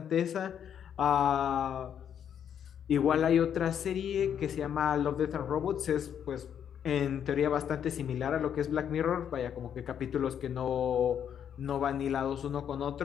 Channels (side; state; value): right; quieter; 8.8 dB